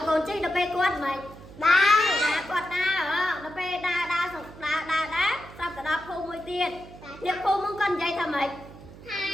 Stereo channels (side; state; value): right; noise; hum, 18 dB below the sound